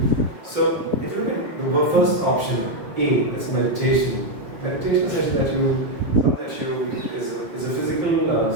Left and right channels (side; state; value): left; late; 5.7 ms